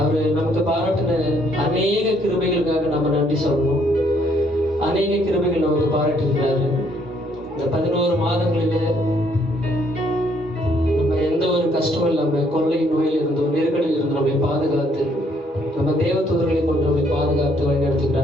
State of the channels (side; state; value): both; normal; correlation 0.68